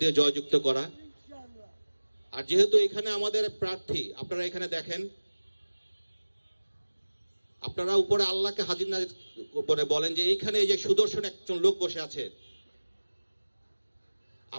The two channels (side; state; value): both; inverted; correlation -1.00